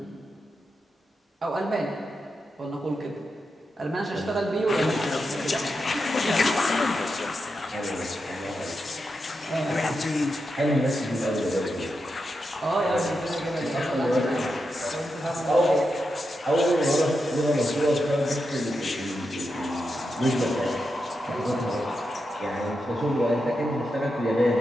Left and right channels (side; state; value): both; normal; correlation 0.87